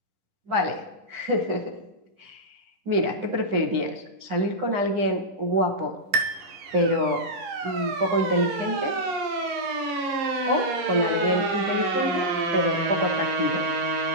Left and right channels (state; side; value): late; left; 11 ms